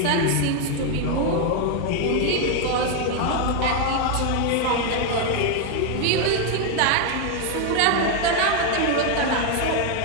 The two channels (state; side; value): different; both; correlation 0.01